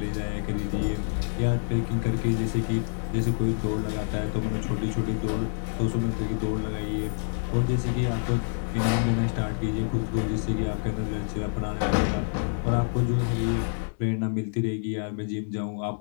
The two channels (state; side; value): silent; right; digital silence